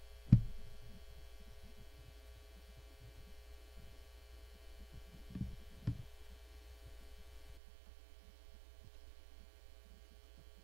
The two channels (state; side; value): drops out; left; at 7.6 s